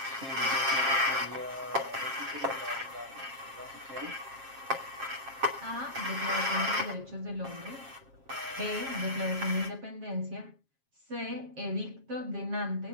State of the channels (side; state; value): left; late; 7.4 ms